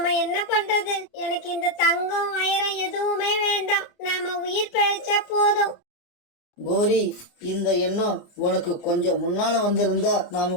என்ன பண்றது? எனக்கு இந்த தங்கம் வைரம் எதுவுமே வேண்டாம். நாம உயிர் பிழைச்சா போதும். கோரி, இந்த எண்ணம் உனக்கு கொஞ்சம் முன்னால வந்திருந்தா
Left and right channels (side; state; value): right; late; 28 ms